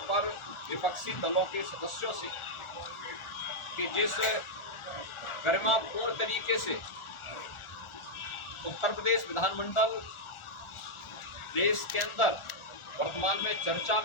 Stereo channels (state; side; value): late; right; 1.4 ms